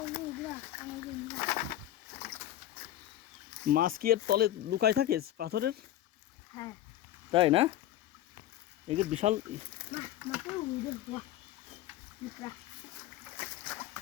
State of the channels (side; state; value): right; quieter; 13.2 dB